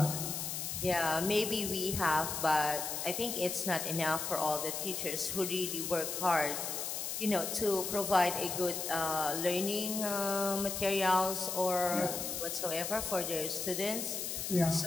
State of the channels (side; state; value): left; noise; hiss, 3 dB below the sound